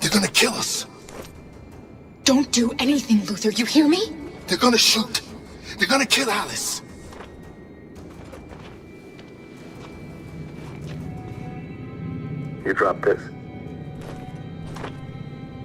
gonna kill us. Don't do anything, Luther. You hear me? They're gonna shoot. They're gonna kill Alice. You drop this.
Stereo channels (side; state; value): both; identical; correlation 1.00